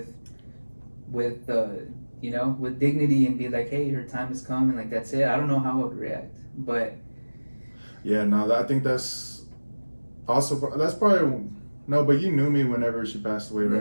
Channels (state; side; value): inverted; both; correlation -1.00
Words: dignity and be like, hey, her time has come, and like that's it. I don't know how I would react, but yeah, no, I think that's probably no, but you knew me whenever she passed away,